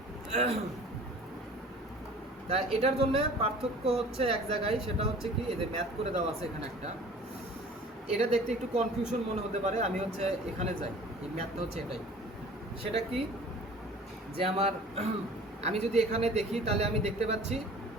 তা এটার জন্য পার্থক্য হচ্ছে এক জায়গায়, সেটা হচ্ছে কি, এই যে ম্যাথ করে দেওয়া আছে এখানে একটা, এটা দেখতে একটু কনফিউশন মনে হতে পারে। আমি হচ্ছে এখানে যাই, এই ম্যাথটা হচ্ছে এটাই। সেটা কি যে আমার আমি যদি এখানে দেখি, তাহলে আমি দেখতে পাচ্ছি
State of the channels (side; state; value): both; normal; correlation 0.46